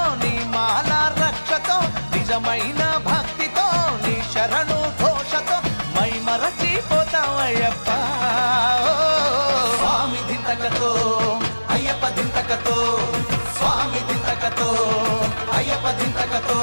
నీ మాల రక్షతో నిజమైన భక్తితో నీ శరణు ఘోషతో మై మరచిపోతామయ్యప్ప స్వామి దింతకతో అయ్యప్ప దింతకతో స్వామి దింతకతో అయ్యప్ప దింతకతో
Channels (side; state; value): both; inverted; correlation -1.00